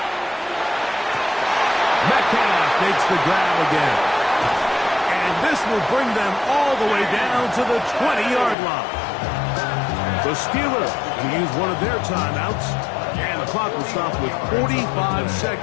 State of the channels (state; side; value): drops out; right; at 8.6 s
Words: Metcalf makes the grab again. And this will bring them all the way down to the 20-yard line. The Steelers will use one of their timeouts, and the clock will stop with 45